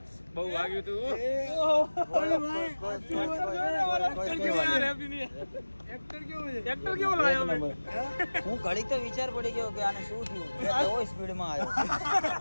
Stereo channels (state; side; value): inverted; both; correlation -1.00